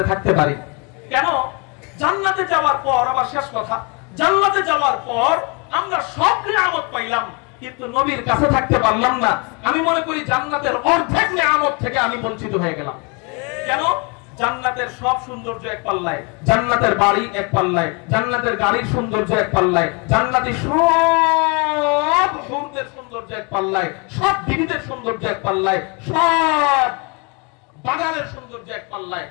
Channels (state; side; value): quieter; right; 32.2 dB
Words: থাকতে পারি কেন জান্নাতে যাওয়ার পর আবার শেষ কথা জান্নাতে যাওয়ার পর আমরা সব নিয়ামত পাইলাম কিন্তু নবীর কাছে থাকতে পারলাম না আমি মনে করি জান্নাতের অর্ধেক নিয়ামত থেকে আমি বঞ্চিত হয়ে গেলাম কেন জান্নাতের সব সৌন্দর্য এক পাল্লায় জান্নাতের বাড়ি এক পাল্লায় জান্নাতের গাড়ির সৌন্দর্য এক পাল্লায় জান্নাতি সব হুরদের সৌন্দর্য এক পাল্লায় সব বিবিদের সৌন্দর্য এক পাল্লায় সব বাগানের সৌন্দর্য এক পাল্লায়